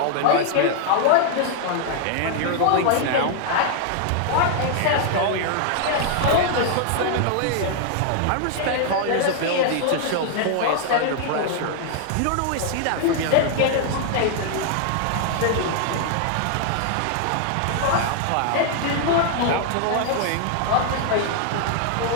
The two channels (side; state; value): both; different; correlation 0.00